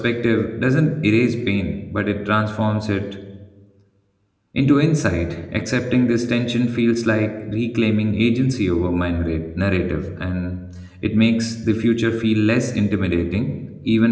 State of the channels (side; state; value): both; identical; correlation 1.00